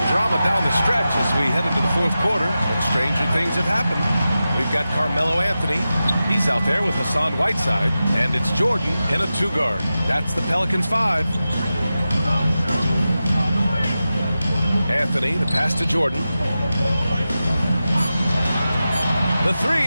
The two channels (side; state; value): both; inverted; correlation -0.93